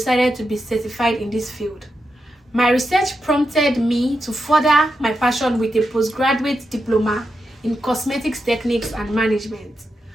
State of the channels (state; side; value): normal; both; correlation 0.86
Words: to be certified in this field. My research prompted me to further my passion with a postgraduate diploma in cosmetics techniques and management.